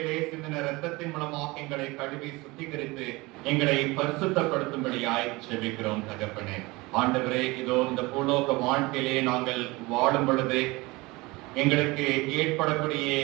சிந்தின இரத்தத்தின் மூலமாக எங்களை கழுவி சுத்திகரித்து எங்களை பரிசுத்தப்படுத்தும்படியாய் ஜெபிக்கிறோம். தகப்பனே ஆண்டவரே, இதோ இந்த பூலோக வாழ்க்கையிலே நாங்கள் வாழும் பொழுது எங்களுக்கு ஏற்படக்கூடிய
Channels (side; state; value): left; quieter; 22.9 dB